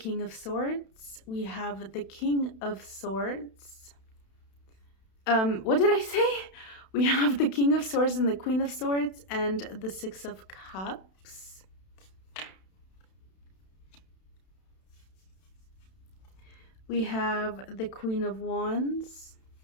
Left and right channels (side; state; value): right; late; 32 ms